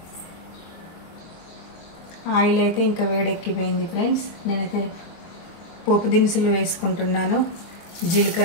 ఆయిల్ అయితే ఇంకా వేడెక్కిపోయింది ఫ్రెండ్స్. నేనైతే పోపు దినుసులు వేసుకుంటున్నాను.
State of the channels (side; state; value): right; late; 23 ms